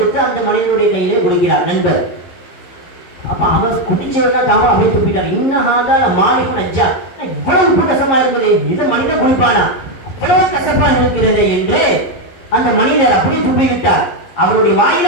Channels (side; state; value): right; late; 11 ms